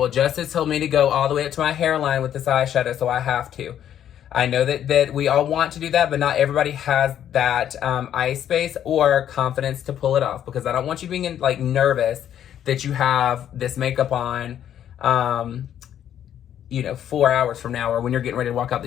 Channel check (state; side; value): quieter; right; 10.2 dB